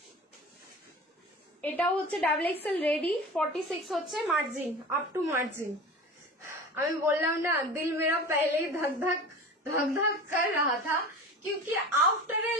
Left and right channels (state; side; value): normal; both; correlation 0.35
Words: এটাও হচ্ছে ডাবল এক্সেল রেডি। 46 হচ্ছে মার্জিন, আপ টু মার্জিন। আমি বললাম না, দিল মেরা पहले धक धक कर रहा था, क्योंकि आफ्टर ए